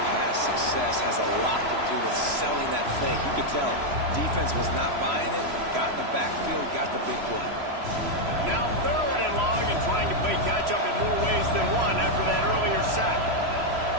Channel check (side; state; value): left; late; 3.0 ms